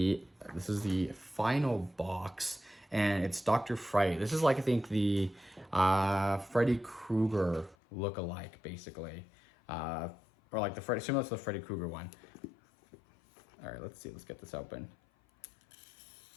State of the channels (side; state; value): right; drops out; at 7.8 s